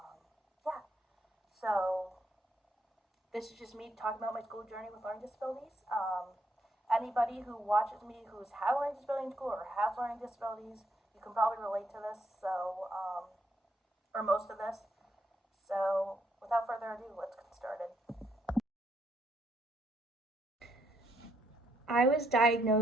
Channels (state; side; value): normal; both; correlation 0.74